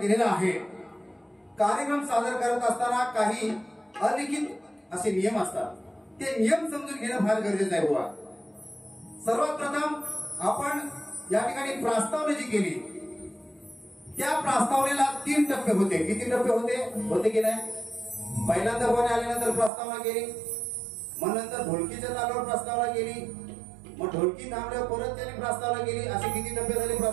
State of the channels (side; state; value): left; drops out; at 19.7 s